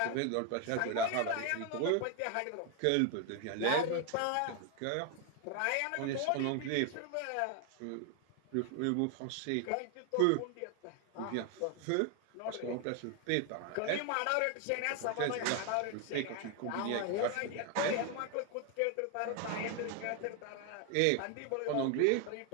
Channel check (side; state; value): both; different; correlation 0.01